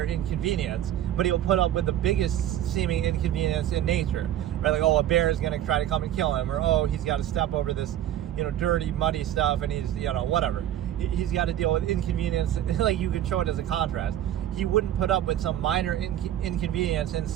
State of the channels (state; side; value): quieter; left; 11.8 dB